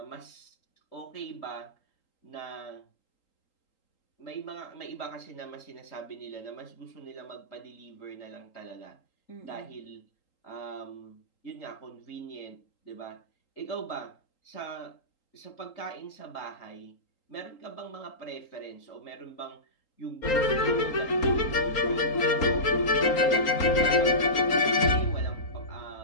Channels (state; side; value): late; right; 3.8 ms